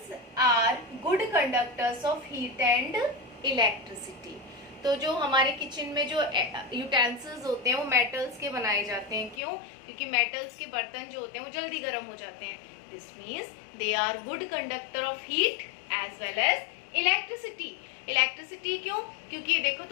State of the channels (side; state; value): right; drops out; at 9.4 s